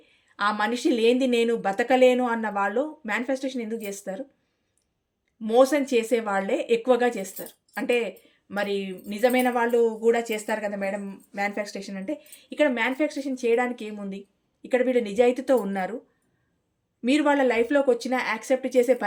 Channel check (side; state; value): both; identical; correlation 1.00